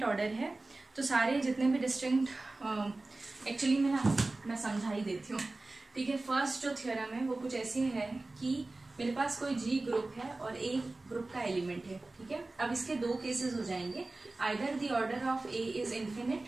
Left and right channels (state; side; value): quieter; left; 3.1 dB